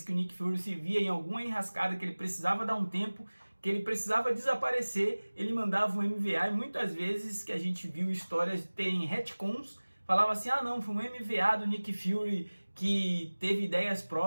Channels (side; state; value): both; inverted; correlation -1.00